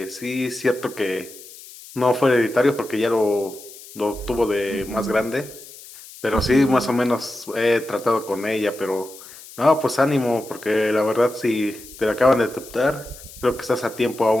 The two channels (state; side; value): noise; left; hiss, 18 dB below the sound